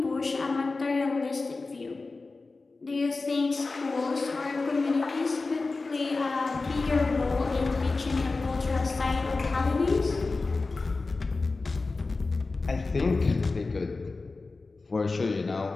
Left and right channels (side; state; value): right; quieter; 3.7 dB